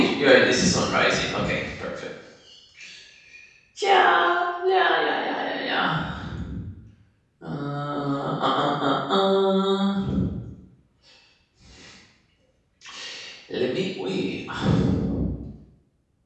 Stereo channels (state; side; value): identical; both; correlation 1.00